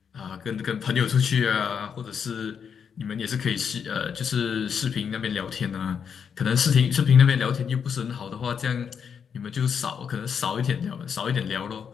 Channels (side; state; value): right; quieter; 7.1 dB